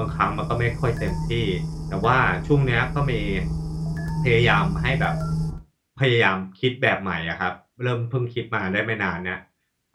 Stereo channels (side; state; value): both; identical; correlation 1.00